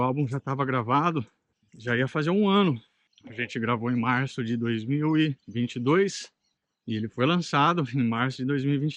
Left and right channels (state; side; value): identical; both; correlation 1.00